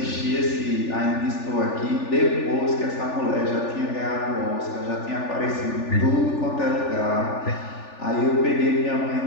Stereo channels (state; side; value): late; right; 3.4 ms